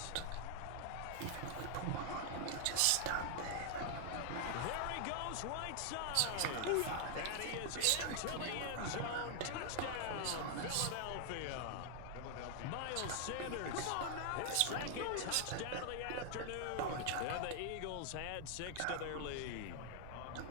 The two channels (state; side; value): different; both; correlation 0.00